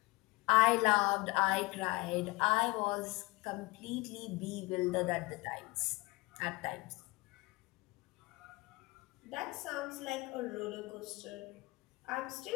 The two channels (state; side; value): quieter; right; 22.9 dB